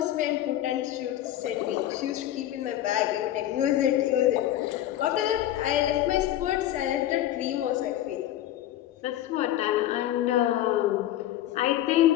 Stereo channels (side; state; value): right; quieter; 12.9 dB